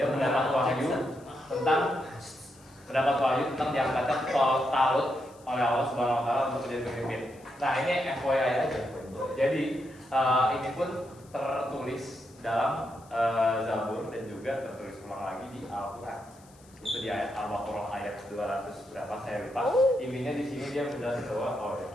mendapat wahyu tentang diangkatnya Talut oleh Allah Subhanahu wa taala untuk menjadi pemimpin. Nah, ini FYI aja. Jadi ini pun tertulis dalam Zabur dan juga tertulis ulang lagi di Al-Qur'an. Itu di ayat Al-Baqarah ayat 200 berapa saya lupa. Intinya di sini dia menjelaskan bahwa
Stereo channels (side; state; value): left; noise; hiss, 27 dB below the sound